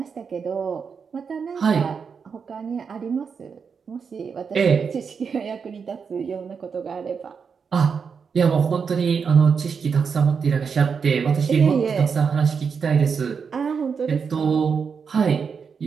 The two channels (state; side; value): quieter; left; 6.0 dB